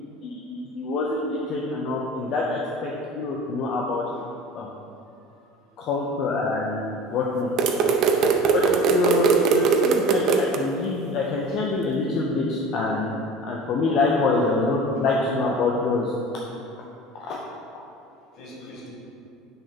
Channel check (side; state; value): both; normal; correlation 0.38